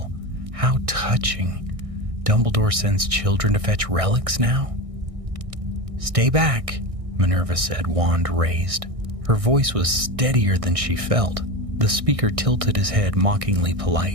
"How touching. Dumbledore sends children to fetch relics now?" "Stay back," Minerva said, wand raised. Her voice was steadier than she felt. The speaker tilted his head, mockingly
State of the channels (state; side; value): late; left; 1.6 ms